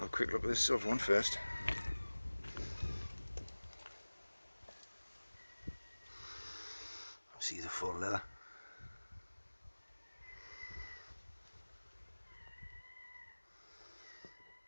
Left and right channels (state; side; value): inverted; both; correlation -1.00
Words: a quick look at this silver one first. See the full leather.